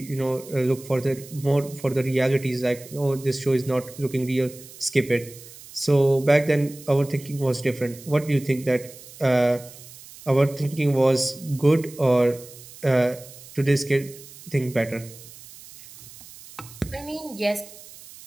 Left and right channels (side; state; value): right; noise; hiss, 18 dB below the sound